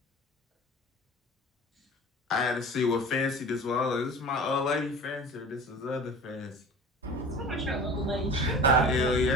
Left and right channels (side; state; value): both; normal; correlation 0.39